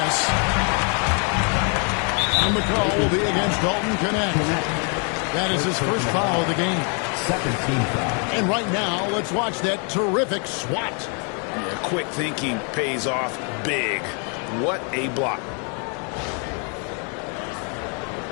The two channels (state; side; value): quieter; right; 38.1 dB